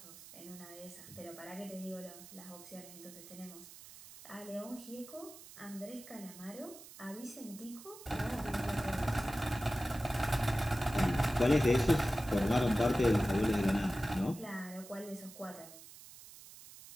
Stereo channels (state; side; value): noise; right; hiss, 17 dB below the sound